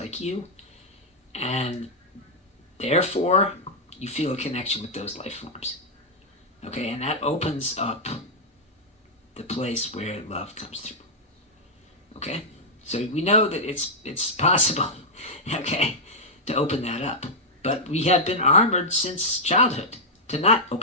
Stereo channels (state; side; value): normal; both; correlation -0.05